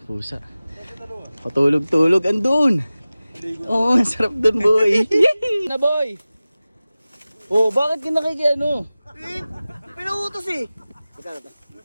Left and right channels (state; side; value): inverted; both; correlation -0.97